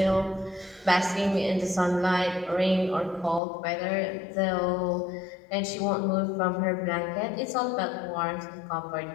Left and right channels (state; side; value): drops out; right; at 3.4 s